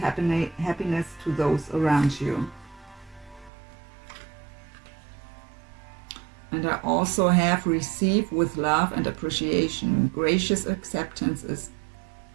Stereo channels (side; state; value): left; drops out; at 3.5 s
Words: to those around you. And I also have receive with love and appreciation. Gracious acceptance is